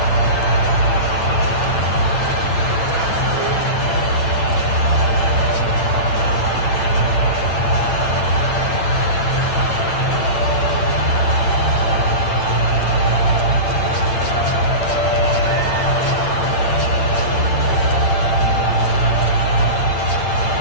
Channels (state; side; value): late; right; 8.9 ms